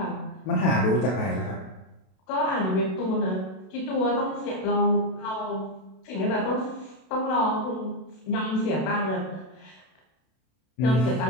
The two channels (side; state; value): right; late; 32 ms